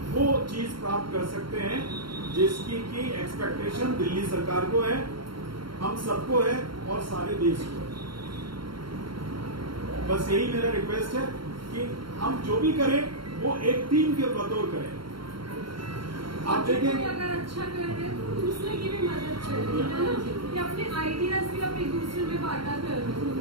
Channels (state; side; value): late; left; 0.73 ms